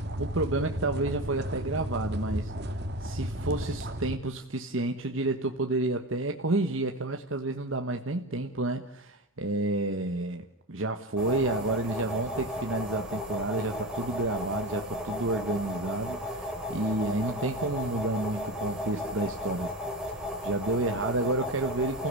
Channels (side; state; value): both; normal; correlation 0.25